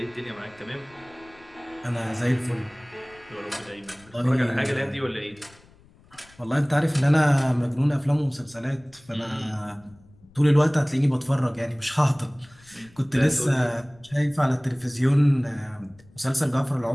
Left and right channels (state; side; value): noise; left; rumble, 27 dB below the sound